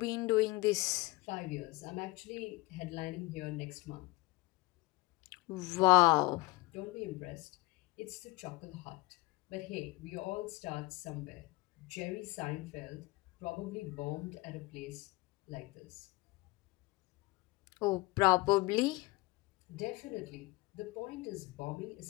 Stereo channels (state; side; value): quieter; right; 22.4 dB